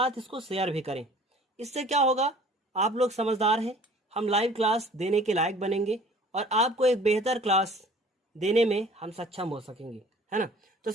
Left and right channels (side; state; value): both; normal; correlation 0.50